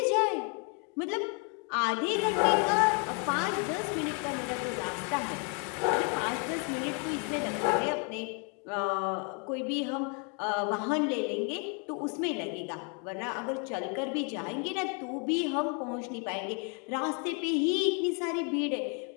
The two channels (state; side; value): quieter; right; 37.4 dB